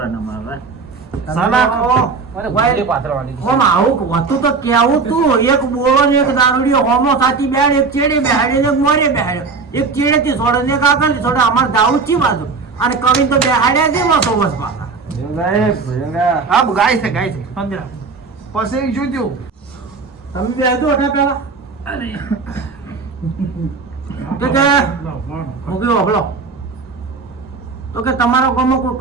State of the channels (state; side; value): quieter; left; 4.6 dB